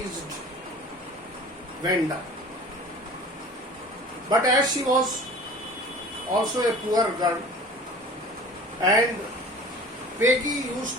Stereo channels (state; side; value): normal; both; correlation 0.43